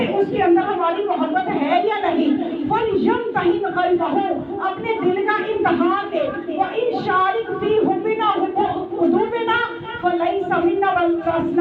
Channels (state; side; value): identical; both; correlation 1.00